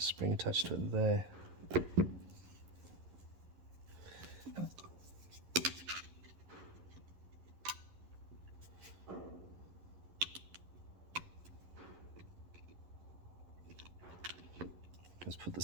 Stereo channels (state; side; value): late; left; 11 ms